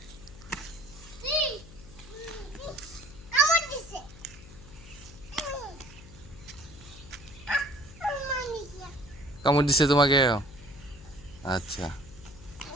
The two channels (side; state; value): left; noise; hum, 18 dB below the sound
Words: কামড় দিছে তোমাকে? আচ্ছা,